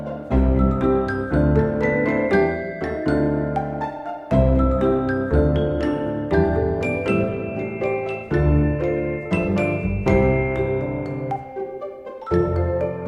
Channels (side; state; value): both; identical; correlation 1.00